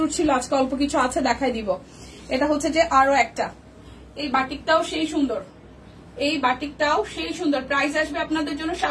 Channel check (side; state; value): both; identical; correlation 1.00